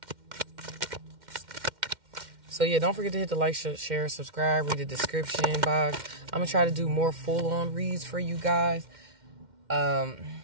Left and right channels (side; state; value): left; late; 2.1 ms